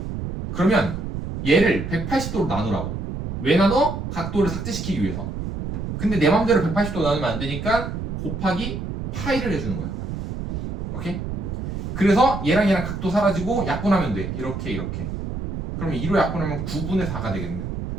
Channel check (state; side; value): noise; right; rumble, 5 dB below the sound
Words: 그러면 얘를 180도로 나누라고. 왜 나눠? 각도를 삭제시키기 위해서. 근데 내 맘대로 180도 나누면 안 되니까 곱하기 파이를 해주는 거야. 오케이? 그래서 얘랑 각도 사라지고 약분하면 돼. 이렇게. 그러면 2로 약분하면 9분의 4가 되겠네.